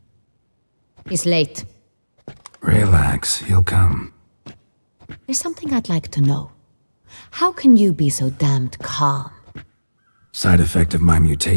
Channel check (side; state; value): both; inverted; correlation -1.00